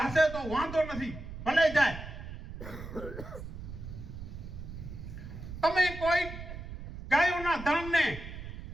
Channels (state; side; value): noise; right; rumble, 10 dB below the sound